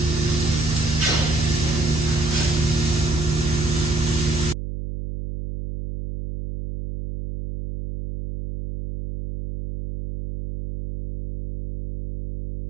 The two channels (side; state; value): right; noise; hum, 7 dB below the sound